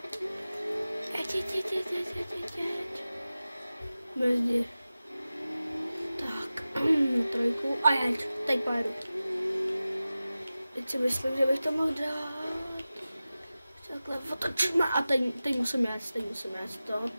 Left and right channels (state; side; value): inverted; both; correlation -0.96